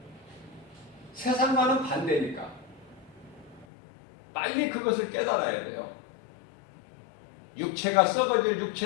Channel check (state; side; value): drops out; right; at 3.7 s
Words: 세상과는 반대니까. 빨리 그것을 깨달아야 돼요. 육체가 썩어질